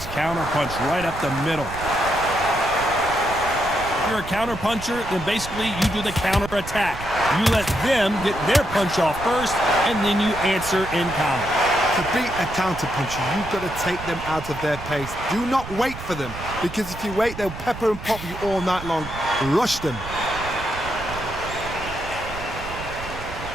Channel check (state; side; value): noise; right; rumble, 11 dB below the sound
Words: counter punch right up the middle. If you're a counter puncher, then basically you do the counter attack. You let them get their punch off first, and then you answer in kind. To beat a counter puncher, you've got to take them out of their pace. Do not wait for them, because if you wait, they'll pepper and pop you all night long. Rush them.